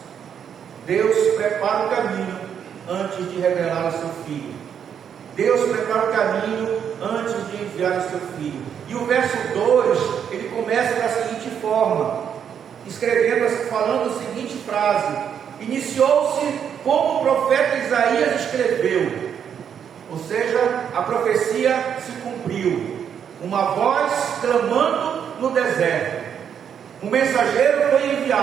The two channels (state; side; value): quieter; left; 8.2 dB